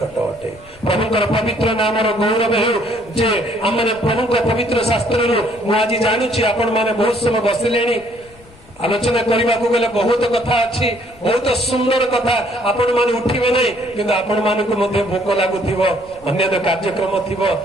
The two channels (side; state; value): left; noise; rumble, 25 dB below the sound